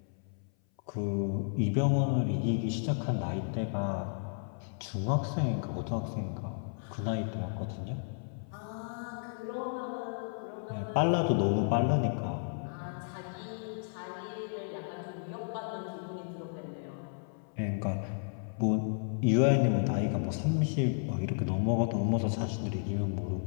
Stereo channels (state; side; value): silent; right; 56 dB below the other